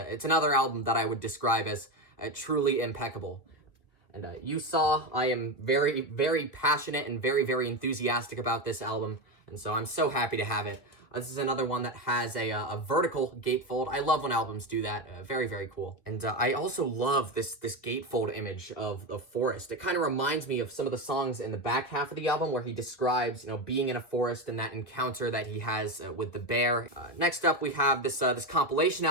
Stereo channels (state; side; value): late; right; 1.8 ms